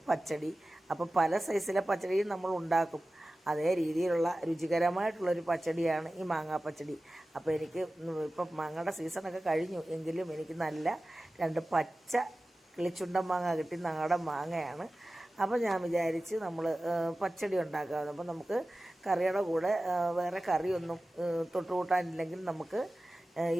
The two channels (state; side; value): normal; both; correlation 0.96